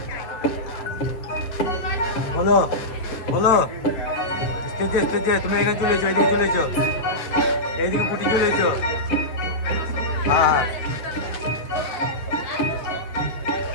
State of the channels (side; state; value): right; late; 8.5 ms